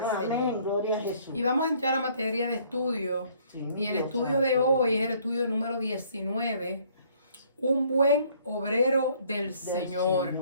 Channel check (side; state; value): both; inverted; correlation -0.61